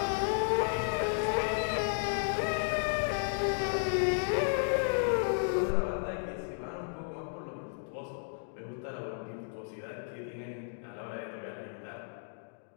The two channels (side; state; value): right; silent; digital silence